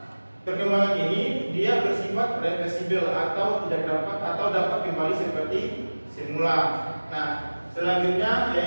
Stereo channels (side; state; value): both; inverted; correlation -1.00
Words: perkembangan ini dia bersifat reversibel atau dapat kembali seperti semula. Nah, selanjutnya